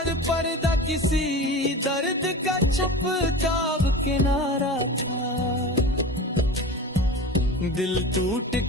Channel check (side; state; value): both; normal; correlation 0.32